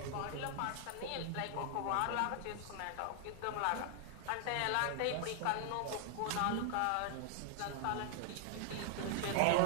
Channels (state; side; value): different; both; correlation 0.00